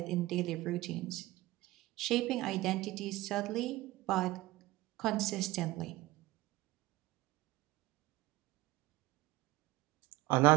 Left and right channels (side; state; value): left; quieter; 18.7 dB